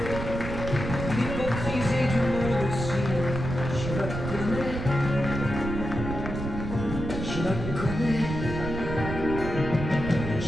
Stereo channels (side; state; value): right; noise; rumble, 5 dB below the sound